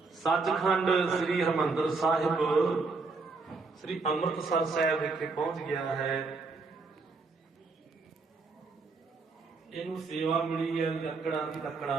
ਸੱਚਖੰਡ ਸ੍ਰੀ ਹਰਿਮੰਦਰ ਸਾਹਿਬ ਸ੍ਰੀ ਅੰਮ੍ਰਿਤਸਰ ਸਾਹਿਬ ਵਿਖੇ ਪਹੁੰਚ ਗਿਆ ਹੈ। ਇਹਨੂੰ ਸੇਵਾ ਮਿਲੀ ਹੈ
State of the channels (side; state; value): left; quieter; 4.1 dB